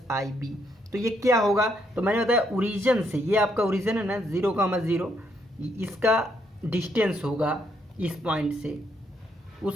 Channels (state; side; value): normal; both; correlation 0.74